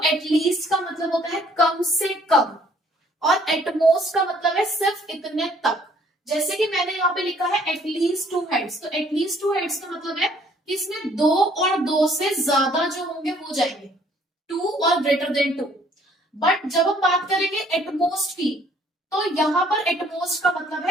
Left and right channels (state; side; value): normal; both; correlation 0.61